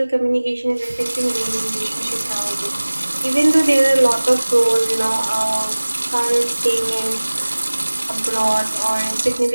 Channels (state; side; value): inverted; both; correlation -1.00